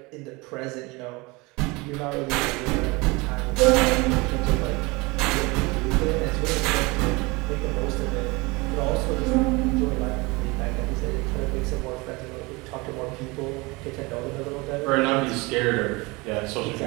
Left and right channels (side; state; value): left; quieter; 24.8 dB